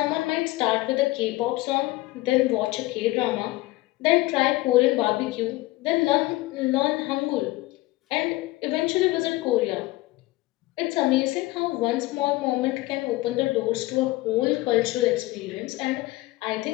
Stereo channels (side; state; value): right; quieter; 19.5 dB